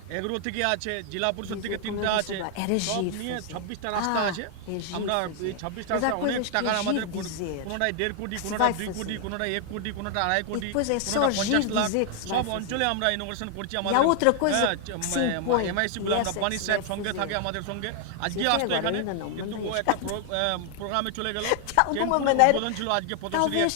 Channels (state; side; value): different; both; correlation 0.00